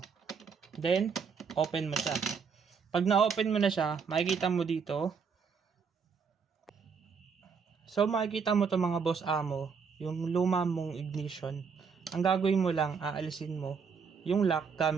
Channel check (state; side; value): quieter; left; 5.9 dB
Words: Then, open mo siya. Pag na-open mo na siya, makikita mo dito. So, makikita mo to mga boss amo, yung luma mong ignition. Ang gagawin mo lang, aalisin mo yung lock